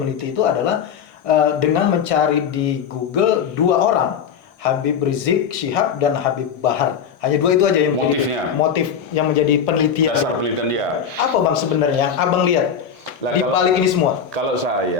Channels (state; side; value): quieter; right; 7.3 dB